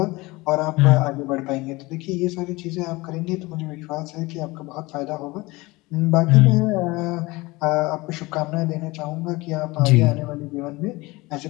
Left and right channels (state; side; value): quieter; right; 22.2 dB